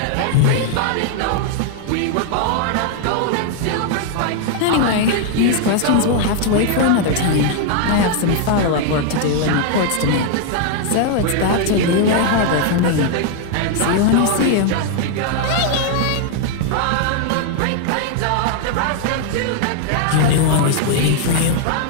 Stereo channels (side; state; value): both; different; correlation 0.00